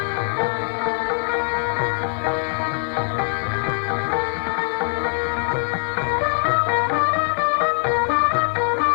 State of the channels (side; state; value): right; silent; digital silence